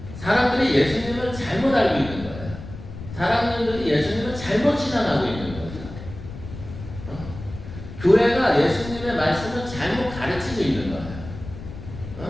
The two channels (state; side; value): noise; left; rumble, 12 dB below the sound